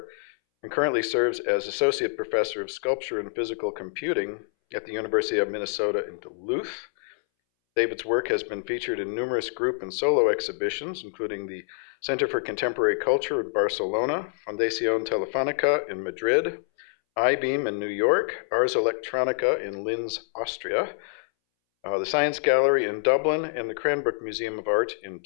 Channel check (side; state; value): right; silent; 61 dB below the other